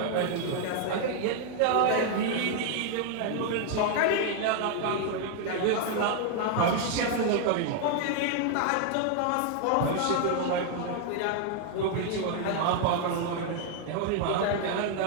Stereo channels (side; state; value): both; different; correlation 0.00